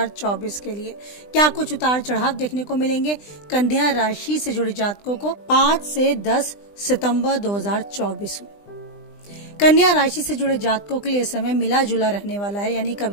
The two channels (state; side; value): late; right; 20 ms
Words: के लिए क्या कुछ उतार चढ़ाव देखने को मिलेंगे कन्या राशि से जुड़े जातकों को 5 से 10 सितंबर 2024 में। कन्या राशि से जुड़े जातकों के लिए समय मिला जुला रहने वाला है, यानी